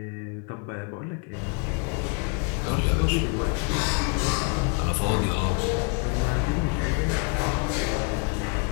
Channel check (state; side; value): quieter; right; 34.4 dB